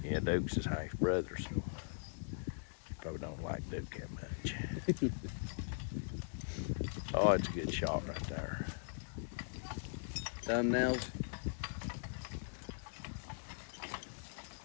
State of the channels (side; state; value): right; silent; digital silence